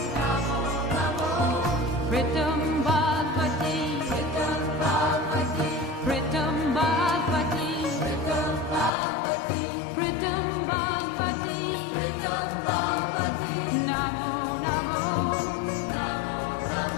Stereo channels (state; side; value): drops out; right; at 8.9 s